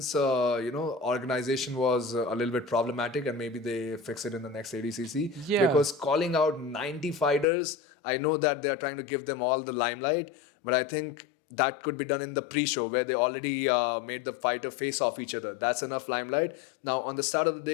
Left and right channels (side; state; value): right; drops out; at 7.5 s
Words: organization was a little bit problematic, and maybe they fix it in the next ADCC. Yeah. Because calling out 90 fighters, I know that they are trying to give them all the limelight, but I think that could be done in the pre-show where they already made the fighter face off each other. That's enough limelight. Now, on the start of the